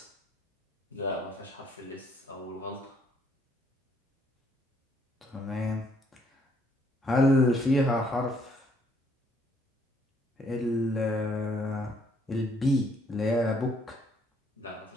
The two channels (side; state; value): both; normal; correlation 0.67